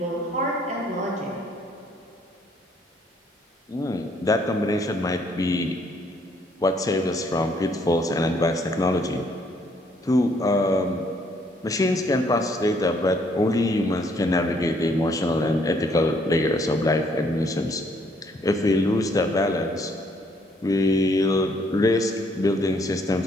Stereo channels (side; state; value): both; normal; correlation 0.67